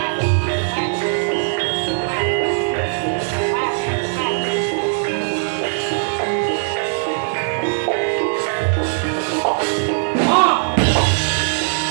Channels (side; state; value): left; silent; digital silence